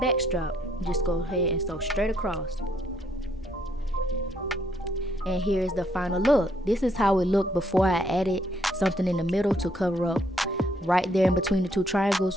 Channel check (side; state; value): both; normal; correlation 0.70